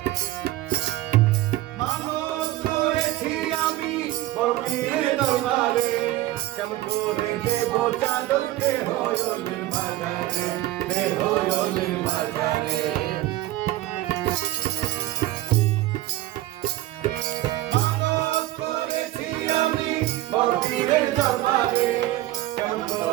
দরবারে কেমন করে দেব চাদর বেহয়লের বাজারে, বেহয়লের বাজারে। মানত করেছি আমি বড়পীরের দরবারে, কেমন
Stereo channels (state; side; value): quieter; left; 16.1 dB